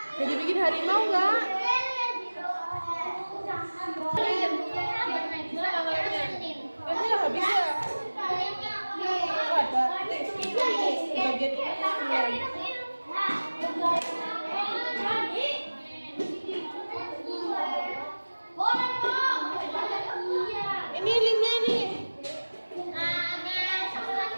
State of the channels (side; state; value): both; inverted; correlation -1.00